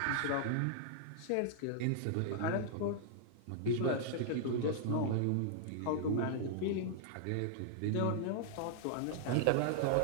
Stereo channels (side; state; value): both; different; correlation -0.01